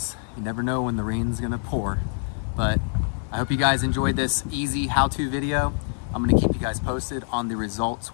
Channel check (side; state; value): right; silent; 62 dB below the other